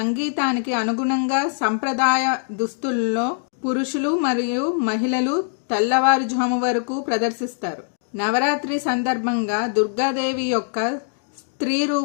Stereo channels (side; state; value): right; silent; digital silence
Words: అనుగుణంగా సంప్రదాయ దుస్తుల్లో పురుషులు మరియు మహిళలు తెల్లవారుజాము వరకు ప్రదర్శిస్తారు. నవరాత్రి సందర్భంగా దుర్గాదేవి యొక్క స్త్రీ